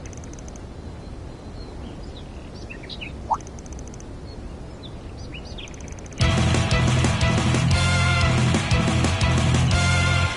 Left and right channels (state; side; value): identical; both; correlation 1.00